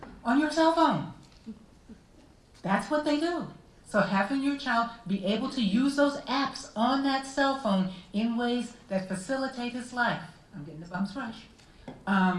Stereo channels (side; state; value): both; identical; correlation 1.00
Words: on your cell phone. That's what they do. So having your child be able to use those apps on that cell phone in ways that facilitate his life. I'm getting the bumps rush.